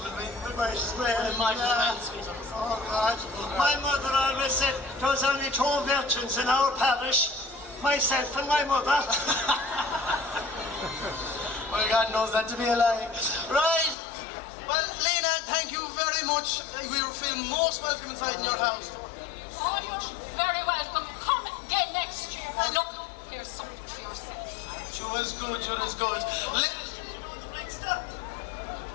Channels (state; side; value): drops out; right; at 14.0 s